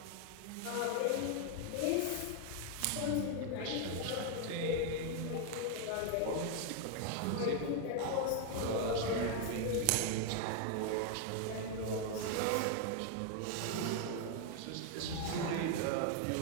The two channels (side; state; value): both; different; correlation 0.01